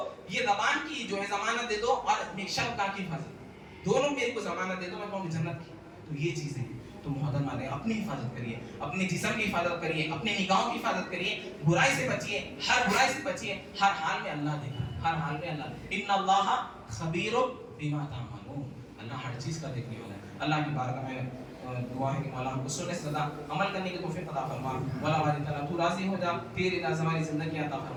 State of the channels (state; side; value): identical; both; correlation 1.00